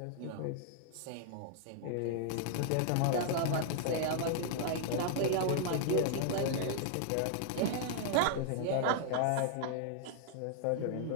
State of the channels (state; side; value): different; both; correlation 0.00